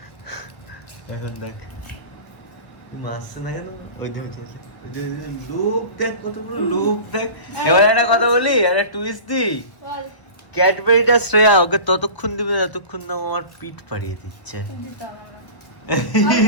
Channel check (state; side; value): late; right; 1.3 ms